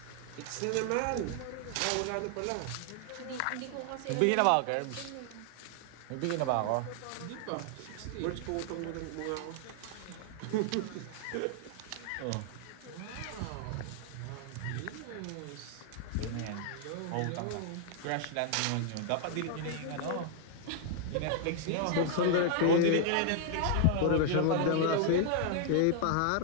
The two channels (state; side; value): different; both; correlation 0.00